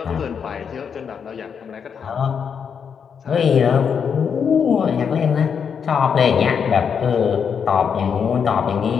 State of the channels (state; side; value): quieter; right; 6.9 dB